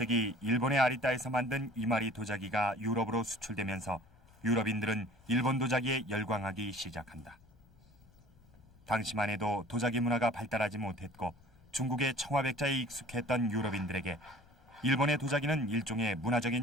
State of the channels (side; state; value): left; noise; rumble, 28 dB below the sound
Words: 일본의 아리따에서 만든 이마리 도자기가 유럽으로 수출되면서 유럽인들은 일본 도자기에 열광하기 시작한다. 당시만 해도 도자기 문화가 발달하지 못했고 중국의 청화백자에 익숙했던 유럽인들에게 일본의 도자기는 일종의